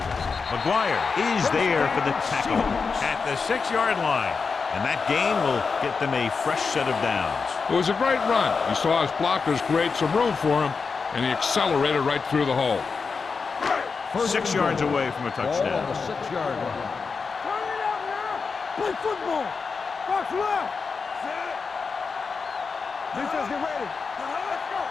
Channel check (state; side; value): quieter; right; 5.0 dB